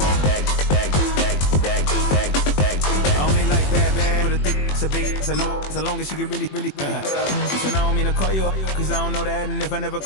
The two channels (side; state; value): right; late; 21 ms